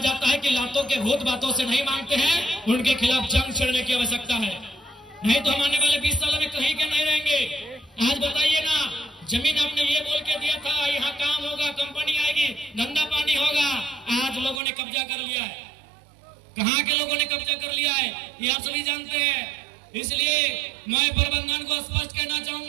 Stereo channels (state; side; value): drops out; left; at 14.6 s